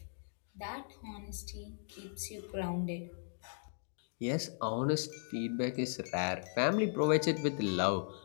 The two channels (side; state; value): right; silent; digital silence